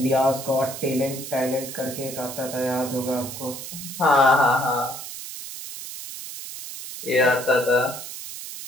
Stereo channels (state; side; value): noise; right; hiss, 10 dB below the sound